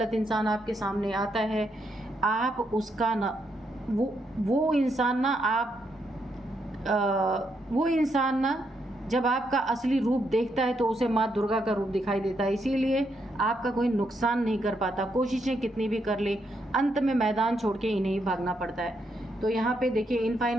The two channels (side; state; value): both; normal; correlation 0.78